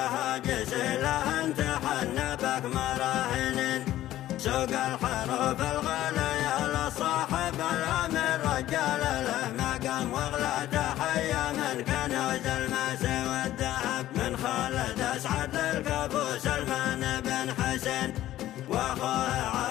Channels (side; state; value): right; quieter; 13.9 dB